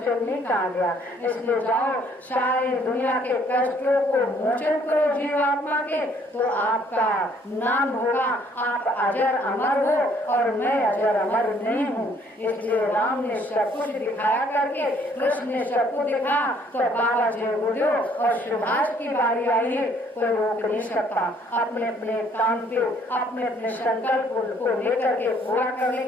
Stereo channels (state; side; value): normal; both; correlation 0.63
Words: नहीं कहा गया। इसलिए जाओ सारी दुनिया के कष्टों को मोचन करो जीवात्मा के, तो आपका नाम होगा, आप अजर अमर हो और मैं अजर अमर नहीं हूँ। इसलिए राम ने सब कुछ दिखाया करके, कृष्ण ने सब कुछ दिखा, तो बाबा जी गुरुदेव और सुभाष की बारी आई है, कोई रोक नहीं सकता। अपने अपने काम पे अपने अपने संकल्प को लेकर के पूरा करने